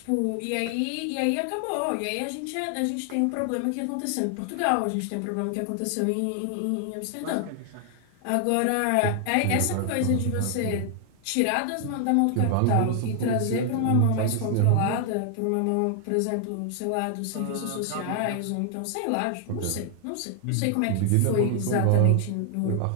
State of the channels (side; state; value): both; different; correlation 0.00